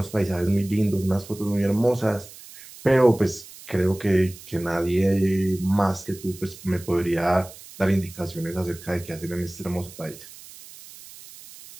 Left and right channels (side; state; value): right; noise; hiss, 18 dB below the sound